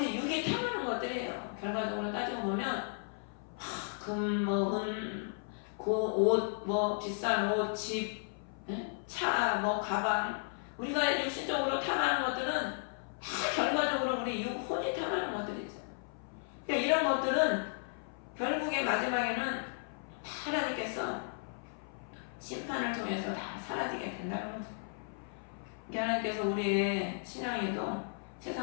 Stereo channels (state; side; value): silent; right; 55 dB below the other